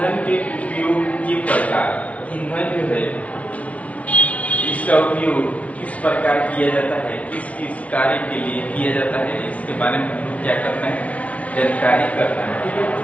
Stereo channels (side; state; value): right; late; 0.066 ms